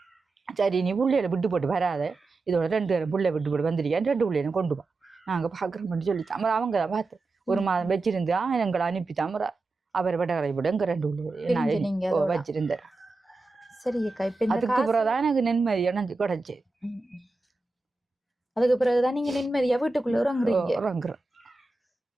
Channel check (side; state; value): left; quieter; 3.4 dB